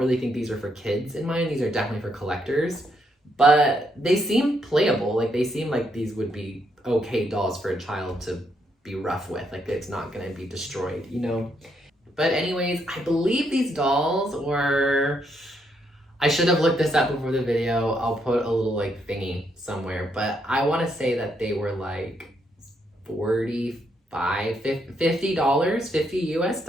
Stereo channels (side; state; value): both; normal; correlation 0.76